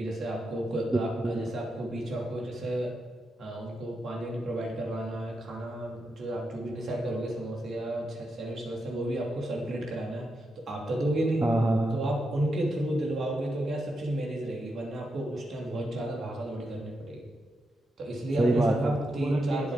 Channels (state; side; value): normal; both; correlation 0.85